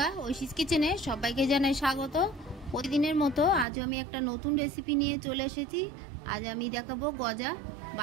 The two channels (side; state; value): left; drops out; at 3.7 s